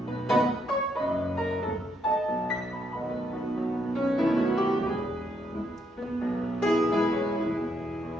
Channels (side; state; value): both; normal; correlation 0.76